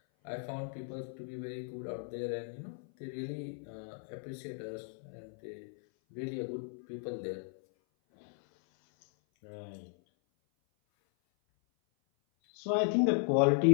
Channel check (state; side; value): silent; right; 53 dB below the other